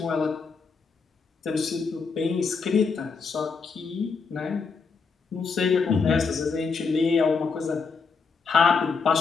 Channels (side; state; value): right; quieter; 5.1 dB